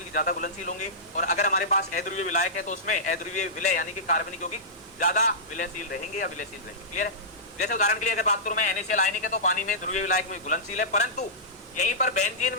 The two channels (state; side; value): normal; both; correlation -0.17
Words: ज्यादा घुलनशील होंगे, और अगर हमारे पास अध्रुवीय विलायक है तो उसमें अध्रुवीय विलय यानी कि कार्बनिक यौगिक ज्यादा विलयशील रहेंगे या विलयशील रहेंगे। क्लियर है। जैसे उदाहरण के लिए अगर बात करूं मैं, NaCl आयनिक है तो पानी में ध्रुवीय विलायक में घुलनशील है, परंतु यहीं पर बेंजीन